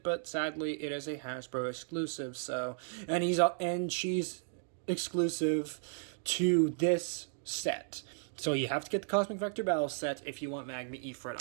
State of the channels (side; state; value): left; silent; digital silence